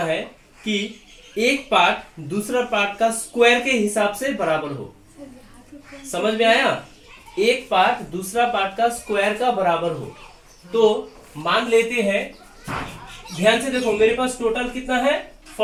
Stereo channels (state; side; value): identical; both; correlation 1.00